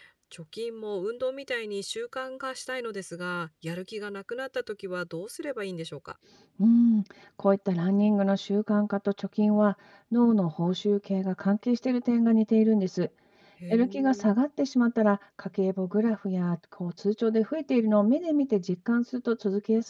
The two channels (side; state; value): both; identical; correlation 1.00